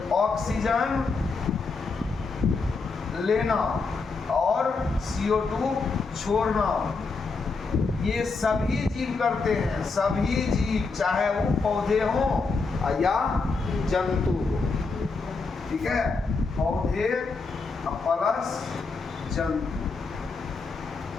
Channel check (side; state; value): right; quieter; 4.2 dB